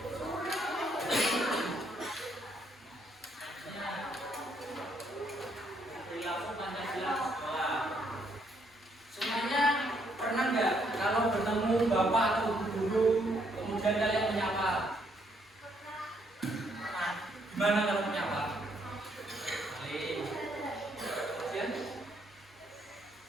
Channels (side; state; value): both; normal; correlation 0.71